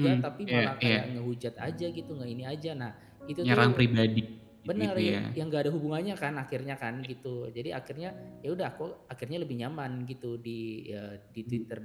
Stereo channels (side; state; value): both; identical; correlation 1.00